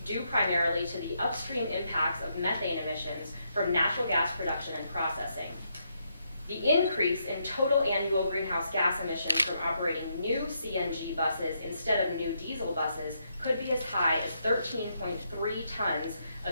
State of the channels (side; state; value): both; inverted; correlation -0.78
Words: due primarily to the upstream impacts of methane emissions from natural gas production and processing. The increase in total annual greenhouse gas emissions from operating new CNG buses instead of new diesel buses could be as high as 13.3 tons